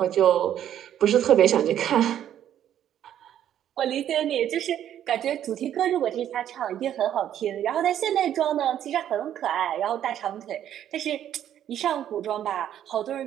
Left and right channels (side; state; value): left; quieter; 10.7 dB